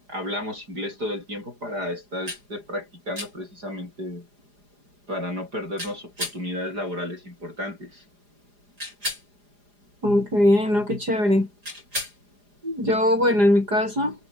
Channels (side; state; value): left; late; 4.9 ms